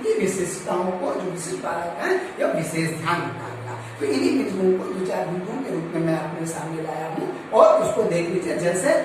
विशेषताओं को, जो विशिष्ट बालक है, यह विशेष ध्यान रखा गया। तो इन्हीं बिंदुओं को 2-4 बिंदुओं के रूप में मैं अपने सामने लाया हूँ और उसको देख लीजिए। जैसे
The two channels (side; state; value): both; identical; correlation 1.00